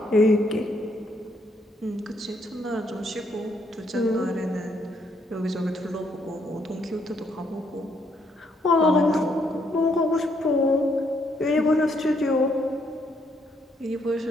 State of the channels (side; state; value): both; normal; correlation 0.73